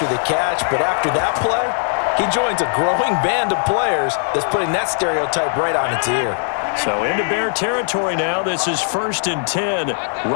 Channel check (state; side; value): silent; right; 66 dB below the other